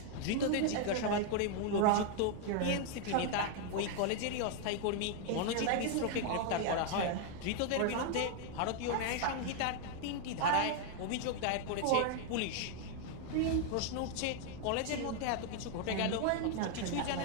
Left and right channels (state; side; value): different; both; correlation 0.00